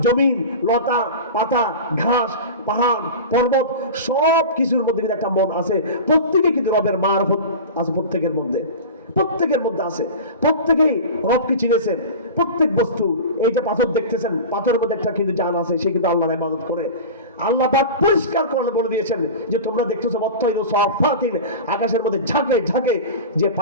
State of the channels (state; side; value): inverted; both; correlation -0.30